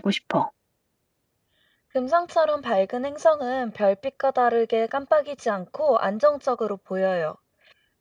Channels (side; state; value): both; identical; correlation 1.00